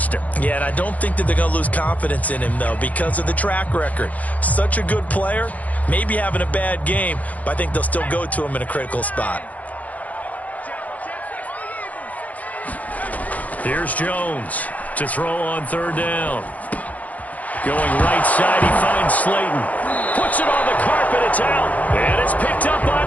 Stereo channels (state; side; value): late; right; 0.074 ms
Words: it. Yeah, and I don't think that they're going to lose confidence in him, though, because of the track record. Such a good player, maybe having a bad game, but I think they'll still go to him in a critical spot. Here's Jones to throw on 3rd down. Going right side, he finds Slayton. Puts it on the carpet, it's out. And it's picked up by